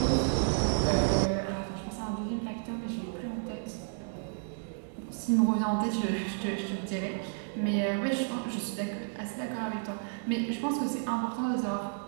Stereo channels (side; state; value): left; silent; digital silence